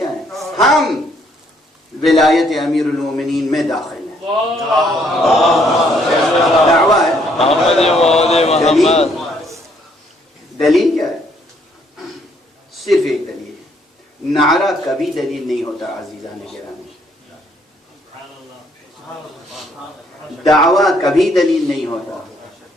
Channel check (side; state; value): both; normal; correlation 0.68